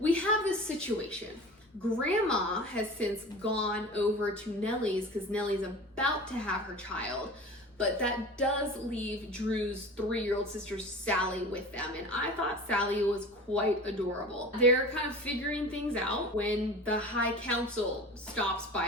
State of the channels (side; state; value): both; normal; correlation 0.37